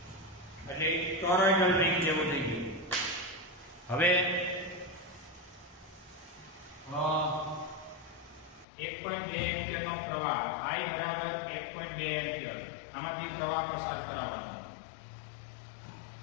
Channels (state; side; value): drops out; right; at 8.7 s